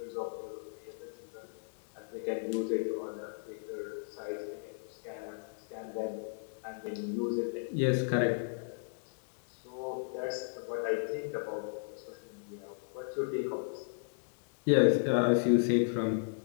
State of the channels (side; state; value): right; silent; digital silence